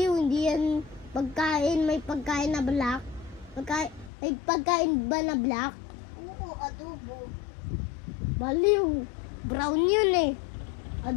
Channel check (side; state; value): right; drops out; at 4.1 s